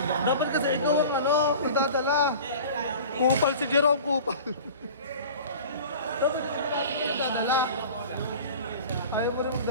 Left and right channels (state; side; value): inverted; both; correlation -0.40